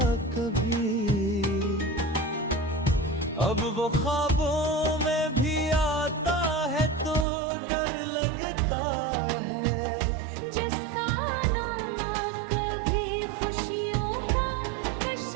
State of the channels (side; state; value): left; drops out; at 7.2 s